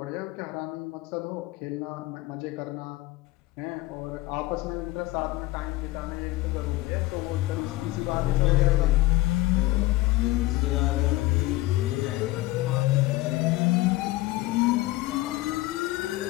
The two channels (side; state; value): right; quieter; 18.6 dB